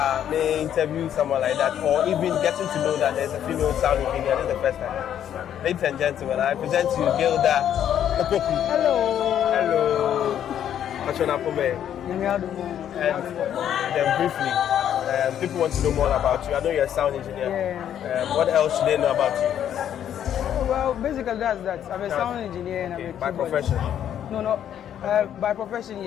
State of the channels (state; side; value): quieter; right; 10.0 dB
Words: may interview someone like that, or even getting to know that there's a female sound engineer. This is the first time. Ladies and gentlemen, I present to you Gilda. OPOKU. Hello. Hello. And then briefly, people want to know more about you. I know you're a sound engineer. Yeah. What else should they know about you? Well, basically that's that. I'm a sound engineer and I'm a by keyboard. profession? No. By profession,